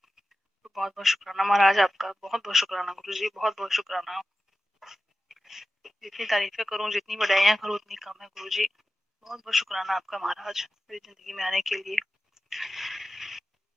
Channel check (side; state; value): both; normal; correlation 0.94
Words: तो बहुत बहुत शुक्राना महाराज आपका, बहुत बहुत शुक्राना गुरुजी, बहुत बहुत शुक्राना। जितनी तारीफें करूं, जितनी बधाइयां करूं उतनी कम है गुरुजी। बहुत बहुत शुक्राना आपका महाराज मेरी जिंदगी में आने के लिए।